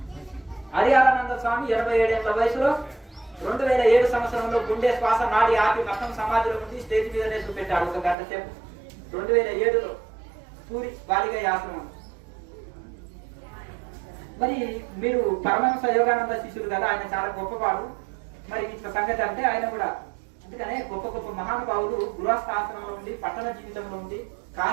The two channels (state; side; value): drops out; left; at 8.2 s